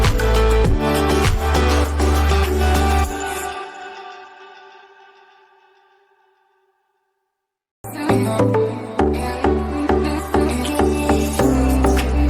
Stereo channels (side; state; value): both; identical; correlation 1.00